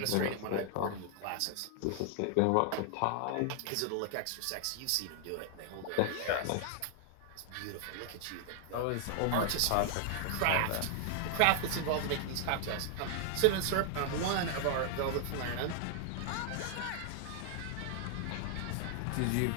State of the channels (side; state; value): both; different; correlation 0.00